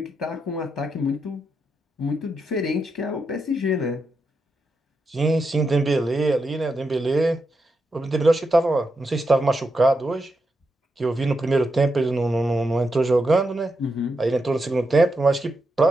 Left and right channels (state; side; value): normal; both; correlation 0.85